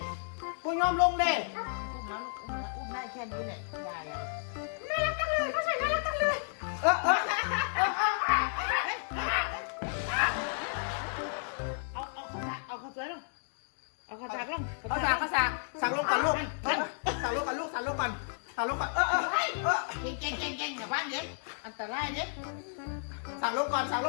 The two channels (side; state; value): right; silent; digital silence